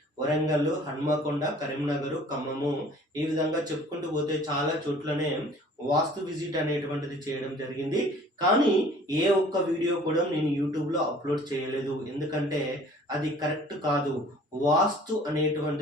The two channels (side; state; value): both; normal; correlation 0.51